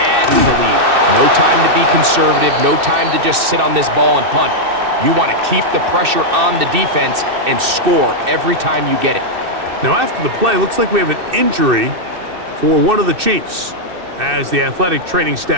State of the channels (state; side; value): late; left; 2.6 ms